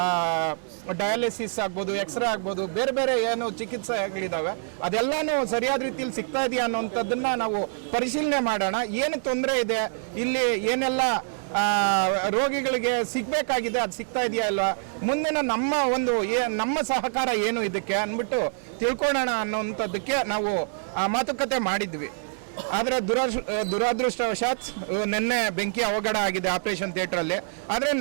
ಡಯಾಲಿಸಿಸ್ ಆಗ್ಬೋದು, ಎಕ್ಸ್ರೇ ಆಗ್ಬೋದು, ಬೇರೆ ಬೇರೆ ಏನು ಚಿಕಿತ್ಸೆಗಳಿದ್ದಾವೆ ಅದೆಲ್ಲನೂ ಸರಿಯಾದ ರೀತಿಯಲ್ಲಿ ಸಿಗ್ತಾ ಇದೆಯಾ ಅನ್ನೋಂಥದ್ದನ್ನು ನಾವು ಪರಿಶೀಲನೆ ಮಾಡೋಣ. ಏನು ತೊಂದರೆ ಇದೆ, ಇಲ್ಲಿ ಏನೆಲ್ಲ ರೋಗಿಗಳಿಗೆ ಸಿಗಬೇಕಾಗಿದೆ ಅದು ಸಿಗ್ತಾ ಇದೆಯಾ ಇಲ್ವಾ, ಮುಂದಿನ ನಮ್ಮ ಸಹಕಾರ ಏನು ಇದಕ್ಕೆ ಅಂದ್ಬಿಟ್ಟು ತಿಳ್ಕೊಳ್ಳೋಣ ಅನ್ನೋಂಥದ್ದಕ್ಕೆ ನಾವು ಮಾತುಕತೆ ಮಾಡಿದ್ವಿ. ಆದರೆ ದುರದೃಷ್ಟವಶಾತ್ ನಿನ್ನೆ ಬೆಂಕಿ ಅವಘಡ ಆಗಿದೆ ಆಪರೇಷನ್ ಥಿಯೇಟ್ರಲ್ಲಿ. ಆದರೆ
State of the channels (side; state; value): left; silent; 61 dB below the other